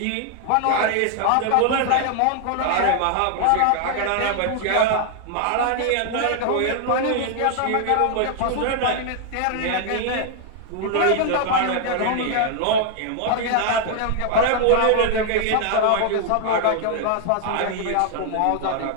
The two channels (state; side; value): different; both; correlation 0.00